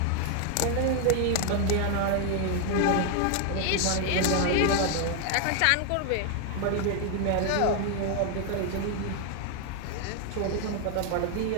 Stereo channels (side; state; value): both; different; correlation 0.00